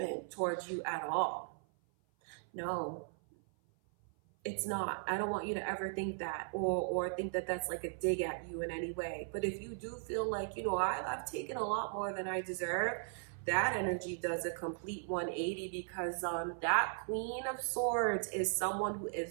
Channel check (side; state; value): left; silent; 53 dB below the other